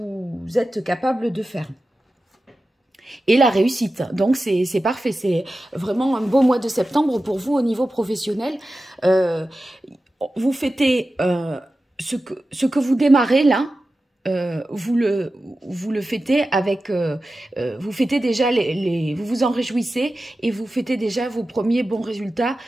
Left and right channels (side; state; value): both; normal; correlation 0.93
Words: êtes capable de faire. Et la réussite, donc c'est parfait, c'est vraiment un beau mois de septembre pour vous au niveau professionnel. Vous fêtez ce que vous démarrez là. Vous le fêtez avec, vous fêtez déjà vous vous en réjouissez et vous fêtez déjà vos premiers bons résultats,